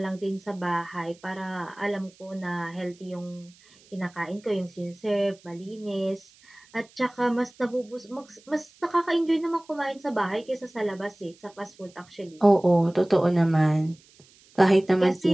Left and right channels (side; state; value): right; noise; hiss, 28 dB below the sound